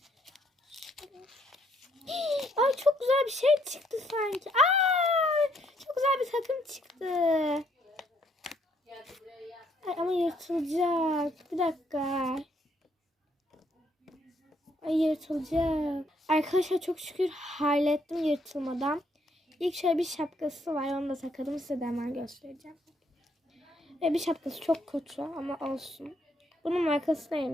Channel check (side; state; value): both; normal; correlation 0.70